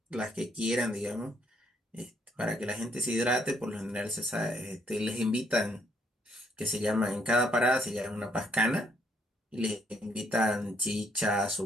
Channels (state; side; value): normal; both; correlation 0.70